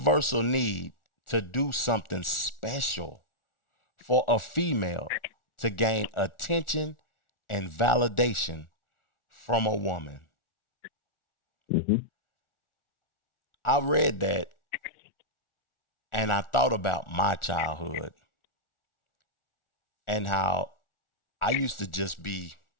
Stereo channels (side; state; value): right; late; 1.4 ms